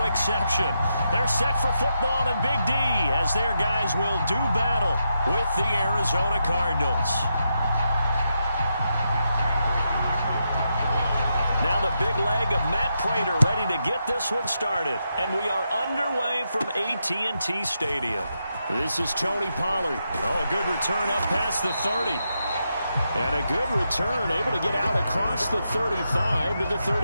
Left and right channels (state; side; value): inverted; both; correlation -0.84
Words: exception. They're set for football in Big D as their guys will do battle with the Arizona Cardinals. Now the big leg of Matt Prater ready to get this one started. And we are underway from AT&T Stadium. This is Tony Pollard. Oh, a good return up past the 30. And a good return, able to get out across the 35 to the